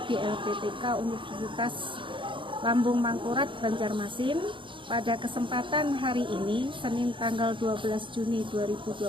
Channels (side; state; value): left; late; 0.24 ms